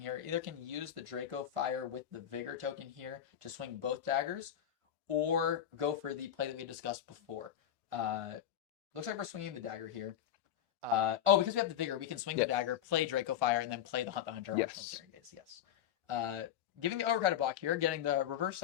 here. Either can use the Draco Fire with the Vigor token here to swing both daggers, or go for the play that we discussed before. Looks like we're swinging the dagger here. Because we have the Vigor, we can swing the Yes. dagger, play Draco Fire, and then play the Hunt the Hunter Arsenal Yes. Searing Gaze. Yes. Giving the overcrowded block here, getting the reverse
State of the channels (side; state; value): right; quieter; 10.3 dB